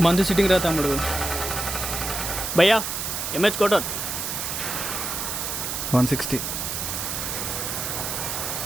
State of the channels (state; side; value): noise; right; hiss, 3 dB below the sound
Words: మందు సిట్టింగ్ రా తమ్ముడు. భయ్యా ఎంహెచ్ కోటర్ 160